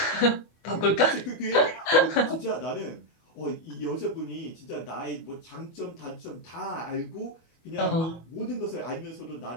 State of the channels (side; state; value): right; late; 24 ms